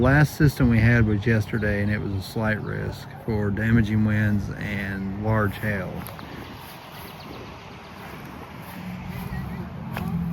system we had was yesterday, and it was a slight risk for damaging winds and large hail.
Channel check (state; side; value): identical; both; correlation 1.00